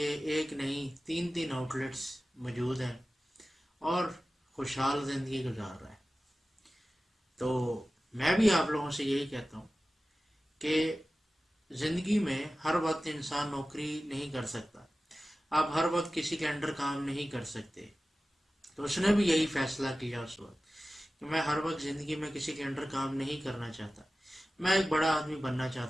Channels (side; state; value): both; normal; correlation 0.96